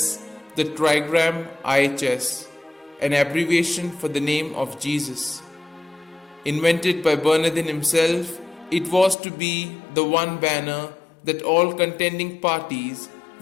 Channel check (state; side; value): drops out; right; at 9.2 s